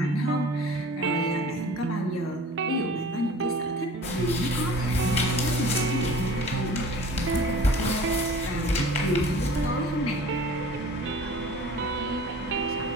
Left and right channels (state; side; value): normal; both; correlation 0.44